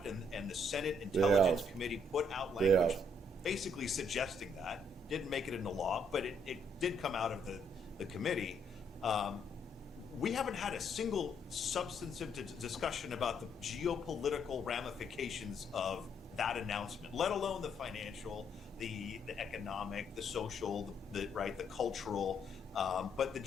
and the Senate Intelligence Committee put out language basically suggesting that, didn't make it into law, but it did come out of the committee. We haven't had a single substantive discussion about the geopolitical ramifications of that announcement, let alone the financial, the economic, the social, the cultural, but the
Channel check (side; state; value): both; normal; correlation 0.71